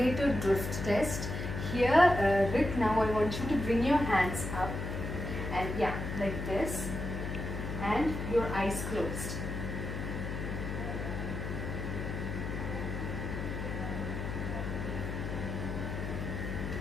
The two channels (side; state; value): left; noise; hum, 4 dB below the sound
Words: drift test. Here Rick, now I want you to bring your hands up and yeah, like this, and your eyes closed.